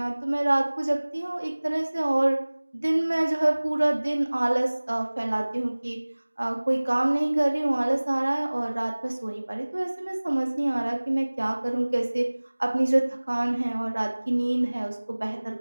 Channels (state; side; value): inverted; both; correlation -1.00